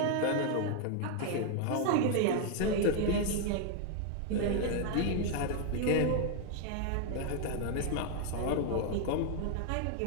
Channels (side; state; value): both; different; correlation 0.00